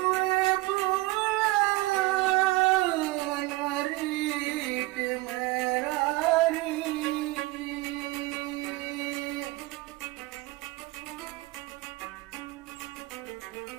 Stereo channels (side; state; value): left; quieter; 20.4 dB